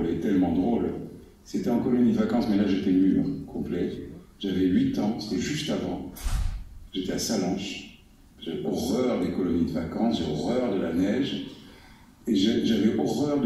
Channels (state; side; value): identical; both; correlation 1.00